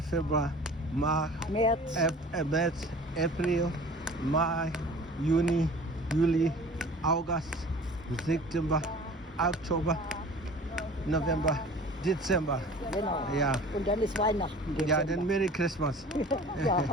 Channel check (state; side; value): normal; both; correlation 0.44